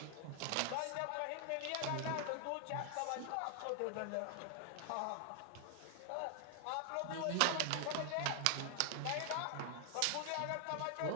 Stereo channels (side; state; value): both; different; correlation 0.00